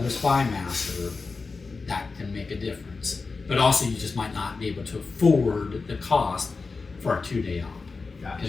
spy master, that can make a difference. But also, you just might not be able to afford the cost for a 2-day op,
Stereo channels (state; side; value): quieter; right; 4.3 dB